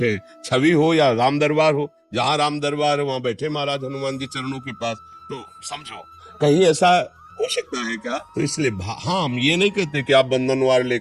हैं। छवि हो या राम दरबार हो, जहाँ राम दरबार है वहां बैठे महाराज हनुमान जी चरणों के पास। तो समझो कहीं ऐसा हो सकता है क्या? तो इसलिए हाँ, हम ये नहीं कहते कि आप बंधनवार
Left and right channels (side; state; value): both; identical; correlation 1.00